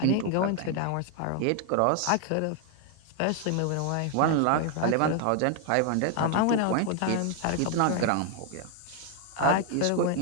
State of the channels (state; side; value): different; both; correlation 0.00